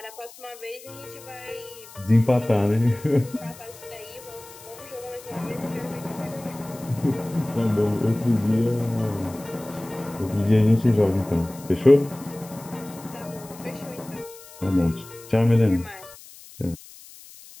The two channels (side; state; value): left; noise; hiss, 19 dB below the sound